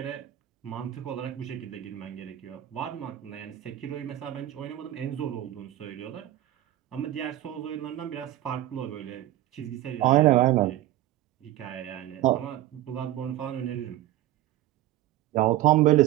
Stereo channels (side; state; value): left; quieter; 14.3 dB